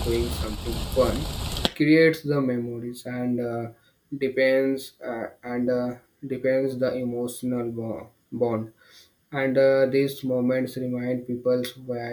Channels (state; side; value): identical; both; correlation 1.00